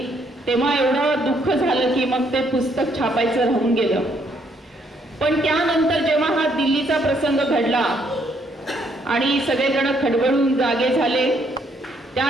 तेव्हा एवढं दुःख झालं की मग ते पुस्तक छापायचं राहून गेलं. पण त्यानंतर जेव्हा हा दिल्लीचा प्रसंग घडला आणि सगळेजण खडबडून जागे झाले,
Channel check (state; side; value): normal; both; correlation 0.70